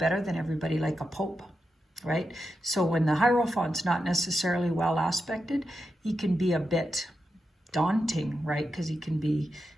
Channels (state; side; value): normal; both; correlation 0.88